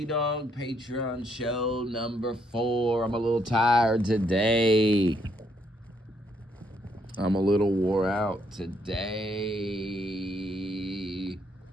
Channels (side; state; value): both; normal; correlation 0.72